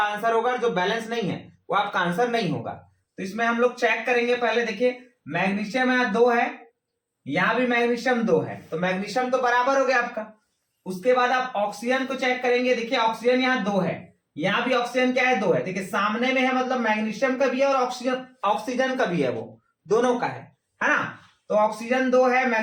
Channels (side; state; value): both; identical; correlation 1.00